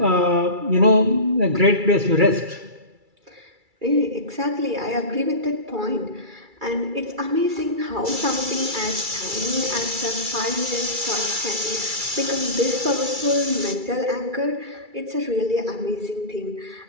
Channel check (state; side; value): late; left; 2.3 ms